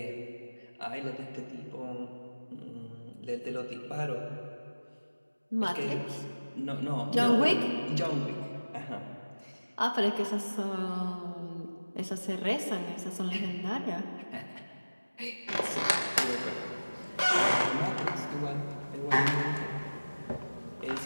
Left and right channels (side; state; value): both; inverted; correlation -1.00